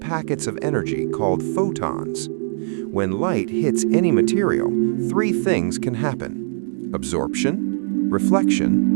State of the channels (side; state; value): left; silent; digital silence